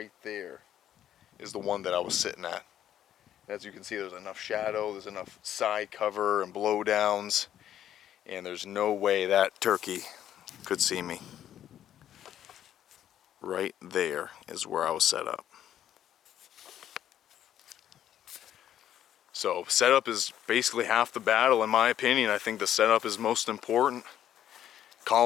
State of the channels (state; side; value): quieter; right; 10.9 dB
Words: there is the one that I was sitting at. As you can see, there's enough shadow, there's enough side cover and blowdowns, and there's no way that turkey could see me. Right there is where I was set up. So setup is basically half the battle, in my opinion. I think the setup is most important.